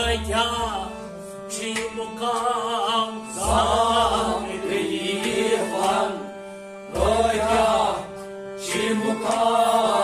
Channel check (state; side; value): identical; both; correlation 1.00